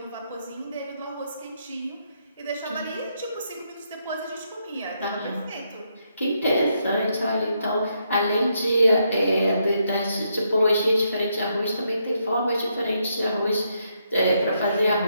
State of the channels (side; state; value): both; inverted; correlation -0.78